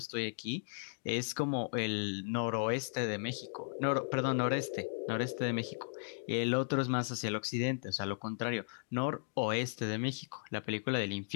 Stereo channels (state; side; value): silent; right; digital silence